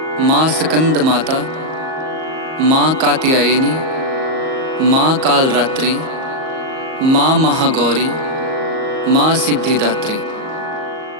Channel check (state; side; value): late; left; 38 ms